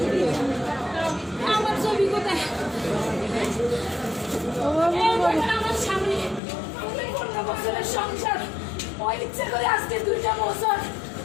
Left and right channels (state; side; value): drops out; right; at 6.4 s